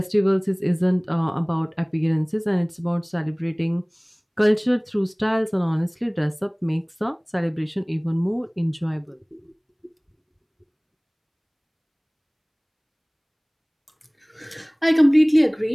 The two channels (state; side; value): identical; both; correlation 1.00